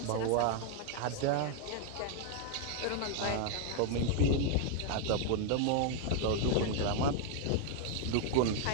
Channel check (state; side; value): different; both; correlation 0.01